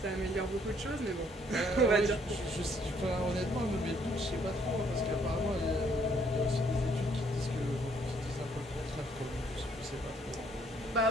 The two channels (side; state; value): both; normal; correlation 0.67